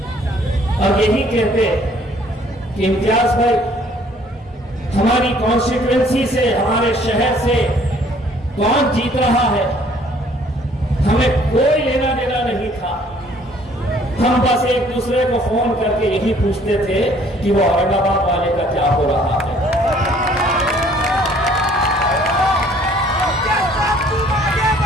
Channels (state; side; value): normal; both; correlation 0.59